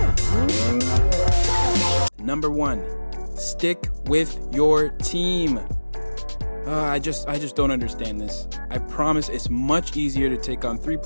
Number 1, stick with your team. I just don't understand this. I promise it's much easier to take on 3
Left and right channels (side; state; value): both; inverted; correlation -1.00